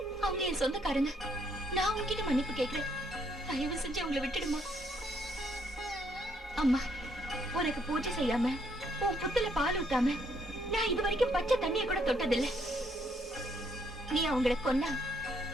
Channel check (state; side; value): normal; both; correlation 0.71